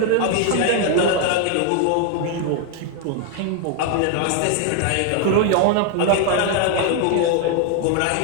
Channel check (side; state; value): both; different; correlation 0.00